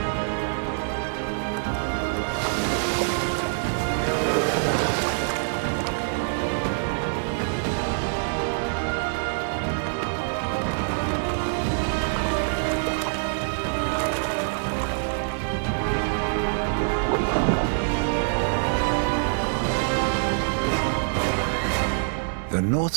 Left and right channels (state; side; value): silent; left; digital silence